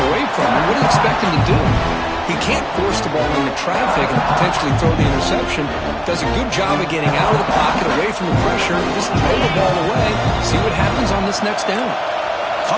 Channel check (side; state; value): both; identical; correlation 1.00